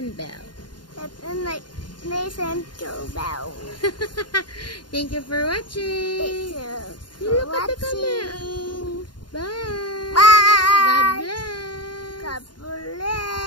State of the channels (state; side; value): late; right; 0.71 ms